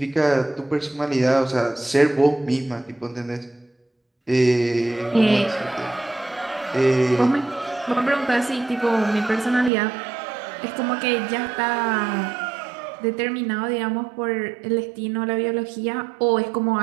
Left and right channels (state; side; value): drops out; left; at 9.7 s